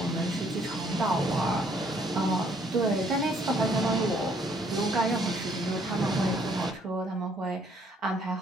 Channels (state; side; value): normal; both; correlation 0.65